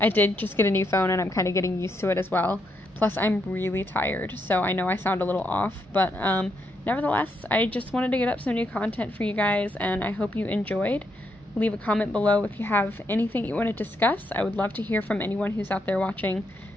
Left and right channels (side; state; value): both; normal; correlation 0.78